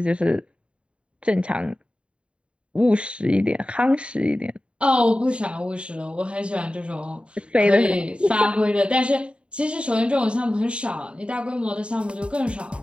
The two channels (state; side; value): late; left; 0.057 ms